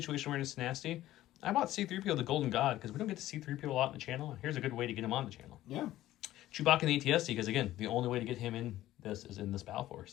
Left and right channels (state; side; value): quieter; right; 14.7 dB